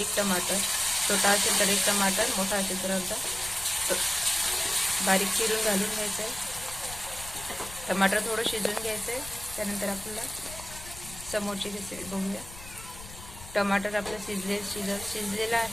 टमाटर, छोटा असेल तर 1 टमाटर, मोठा असेल तर अर्धा, बारीक चिरून घालून घ्यायचं आहे. टमाटर थोडं शिजून घ्यायचं आहे. त्यानंतर आपल्याला समोरची रेसिपी बघूया. टमाटर आपलं शिजलेलं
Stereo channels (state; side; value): noise; left; rumble, 15 dB below the sound